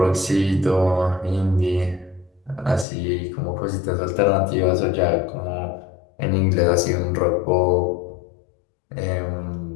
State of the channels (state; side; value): drops out; right; at 2.9 s